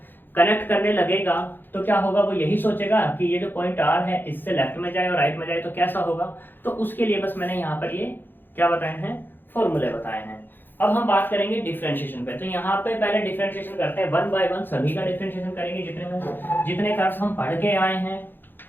कनेक्ट करने लगेगा तो क्या होगा, वो यही सोचेगा कि ये जो पॉइंट आर है इससे लेफ्ट में जाए और राइट में जाए तो कैसा होगा। तो उसके लिए बस मैंने यहाँ पर ये क्या बताए हैं, फॉर्मूले बताए हैं। अब हम बात करेंगे डिफरेंशिएशन पे। तो यहाँ पे पहले डिफरेंशिएशन करते हैं, वन बाय वन सभी का डिफरेंशिएशन करेंगे, जितने कर्व्स हम पढ़ के आए हैं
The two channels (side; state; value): right; late; 0.096 ms